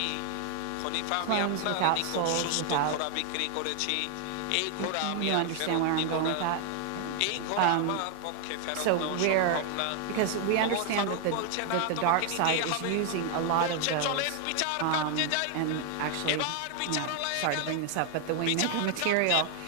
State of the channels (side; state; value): both; different; correlation 0.00